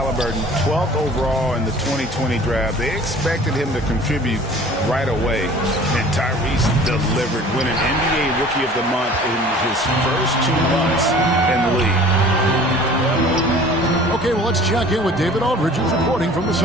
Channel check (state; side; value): normal; both; correlation 0.47